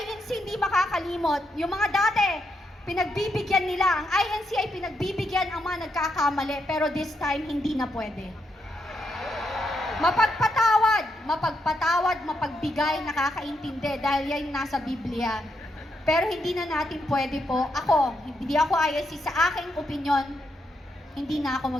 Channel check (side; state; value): both; normal; correlation 0.81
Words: hindi makakalimot. Yung mga dati, pinagbibigyan nila. Ang INC ay pinagbibigyan ang mga nagkakamali. Pero this time, hindi na pwede. Mapagpatawad, mapagbigay, nakakaintindi dahil yan nasa Biblia. Pero hindi na natin pwede po. Hindi ako INC. Sa aking opinyon, hindi na